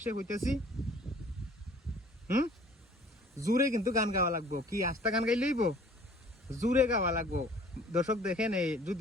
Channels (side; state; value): both; normal; correlation 0.52